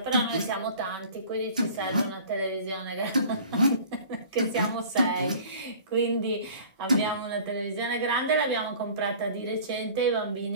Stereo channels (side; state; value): both; inverted; correlation -0.45